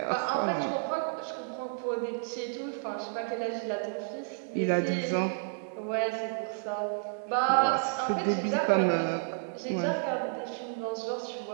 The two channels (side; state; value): left; silent; digital silence